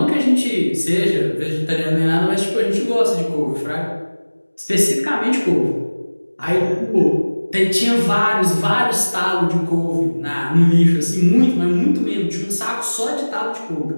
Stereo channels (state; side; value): inverted; both; correlation -1.00